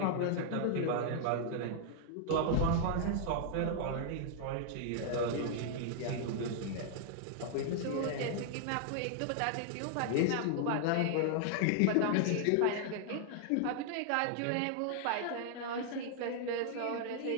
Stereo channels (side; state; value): both; different; correlation -0.01